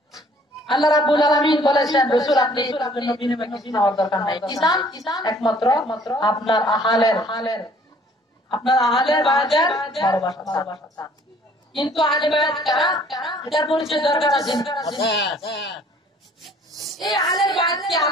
আল্লাহ রাব্বুল আলামিন বলেছেন, রাসূল আপনি এর জন্য বিনিময়ে কিছু নেওয়ার দরকার নাই। কিসান একমাত্র আপনার আহলের বায়াতের ভালোবাসা। কিন্তু আহলে বায়াত কারা? এটার পরিচয় দরকার আছে। এই আহলে বায়াতকে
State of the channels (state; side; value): normal; both; correlation 0.57